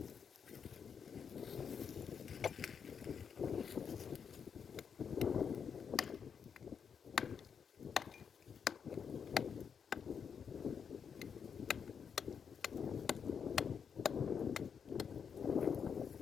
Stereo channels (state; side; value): quieter; right; 6.9 dB